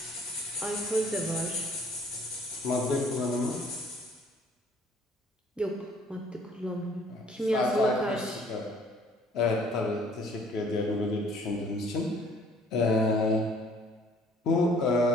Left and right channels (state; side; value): normal; both; correlation 0.57